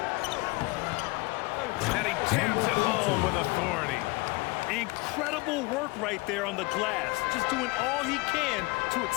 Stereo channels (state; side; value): quieter; right; 24.3 dB